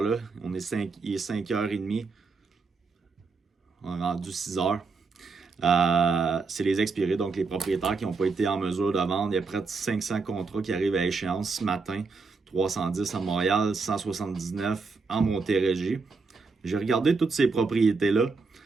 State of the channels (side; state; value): left; quieter; 4.4 dB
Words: Il est 5h30. On est rendu 6h. C'est les expirés, donc les propriétaires qui n'ont pas été en mesure de vendre. Il y a près de 500 contrats qui arrivent à échéance ce matin. 310 à Montréal, 179 en Montérégie. J'ai regardé toutes ces propriétés-là,